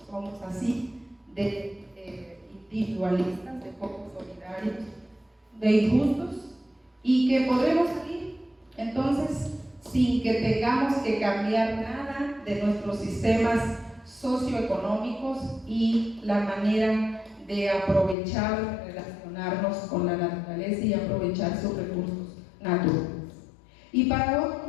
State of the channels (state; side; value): drops out; right; at 18.2 s